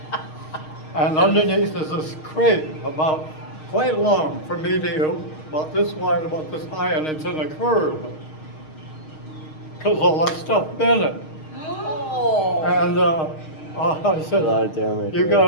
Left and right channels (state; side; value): late; right; 6.4 ms